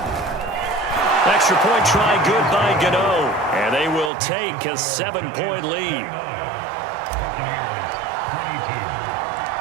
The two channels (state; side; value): drops out; left; at 4.1 s